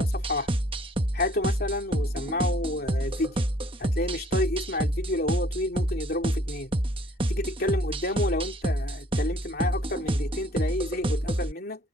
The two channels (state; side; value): normal; both; correlation 0.59